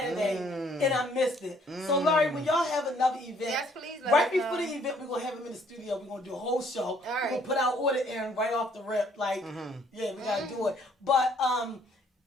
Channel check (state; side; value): normal; both; correlation 0.63